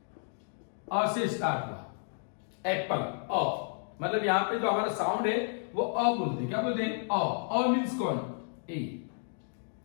अ से स्टार्ट हुआ एप्पल, अ, मतलब यहां पे जो हमारा साउंड है वो अ बोलते हैं। क्या बोलते हैं? अ मींस कौन? ए,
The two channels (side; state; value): right; silent; digital silence